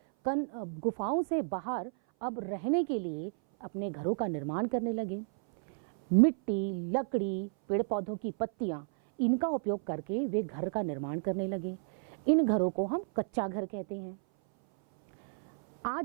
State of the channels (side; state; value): left; silent; 56 dB below the other